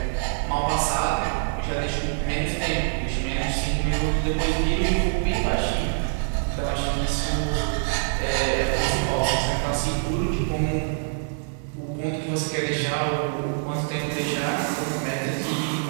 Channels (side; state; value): left; silent; 62 dB below the other